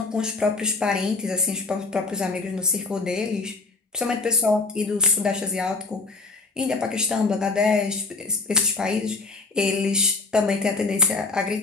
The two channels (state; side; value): quieter; right; 3.7 dB